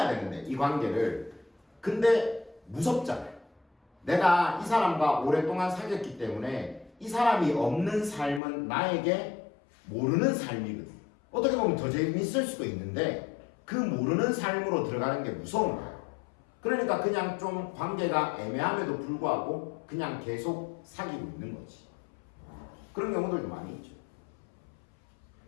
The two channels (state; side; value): drops out; right; at 8.4 s